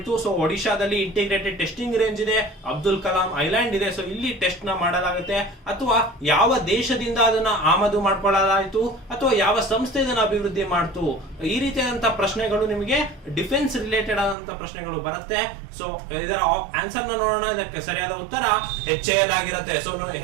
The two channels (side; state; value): left; drops out; at 14.4 s